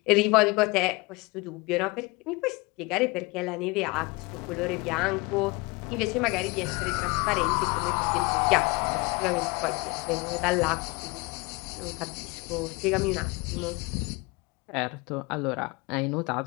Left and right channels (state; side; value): quieter; right; 25.3 dB